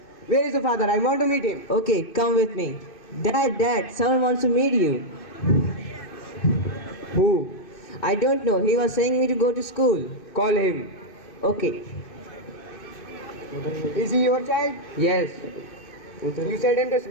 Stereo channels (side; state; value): right; late; 2.6 ms